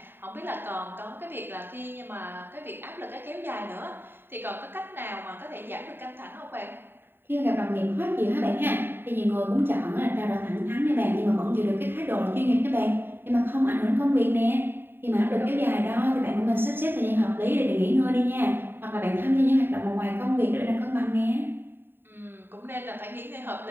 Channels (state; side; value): late; left; 0.10 ms